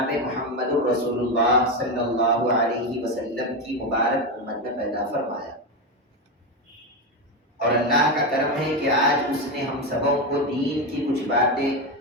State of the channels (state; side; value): normal; both; correlation 0.12